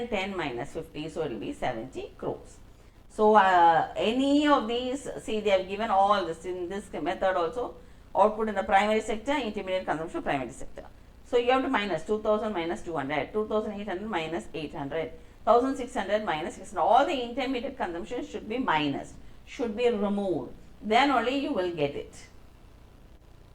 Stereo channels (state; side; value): identical; both; correlation 1.00